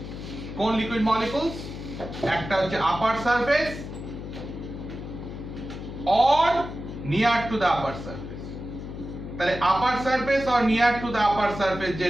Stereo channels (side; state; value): left; noise; hum, 9 dB below the sound